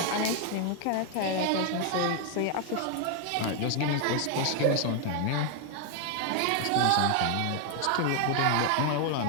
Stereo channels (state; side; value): different; both; correlation 0.00